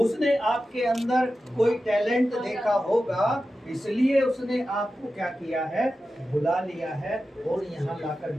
आपके अंदर कोई टैलेंट देखा होगा, इसलिए उसने आपको क्या किया है, बुला लिया है और यहाँ लाकर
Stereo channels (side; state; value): both; normal; correlation 0.92